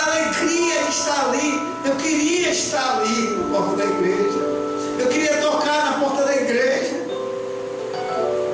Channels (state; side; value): identical; both; correlation 1.00